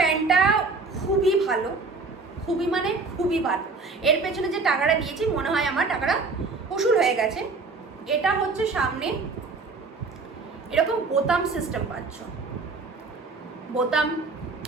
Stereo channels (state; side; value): quieter; left; 4.1 dB